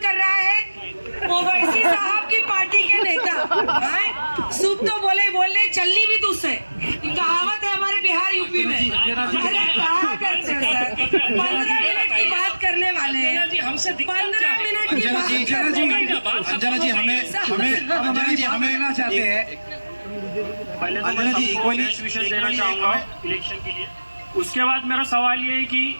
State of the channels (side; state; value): both; inverted; correlation -1.00